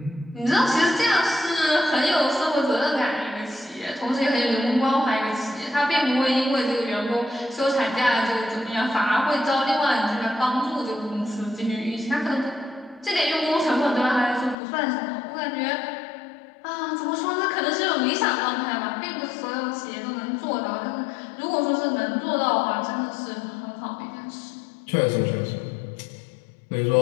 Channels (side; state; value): right; drops out; at 14.6 s